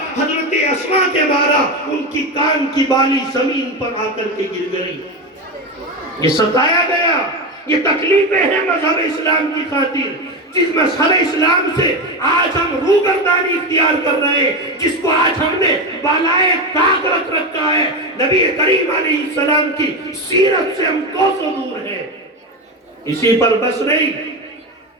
حضرت اسماء کے مارا، ان کی کان کی بالی زمین پر آ کر کے گر گئی۔ یہ ستایا گیا، یہ تکلیفیں ہیں مذہب اسلام کی خاطر، جس مذہب اسلام سے آج ہم روگردانی اختیار کر رہے ہیں، جس کو آج ہم نے بالائے طاق رکھ رکھا ہے، نبی کریم علیہ السلام کی سیرت سے ہم کوسوں دور ہیں۔ اسی پر بس نہیں،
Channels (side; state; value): both; normal; correlation 0.17